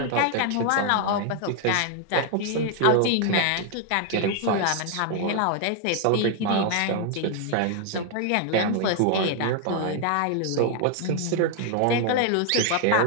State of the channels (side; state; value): both; different; correlation 0.00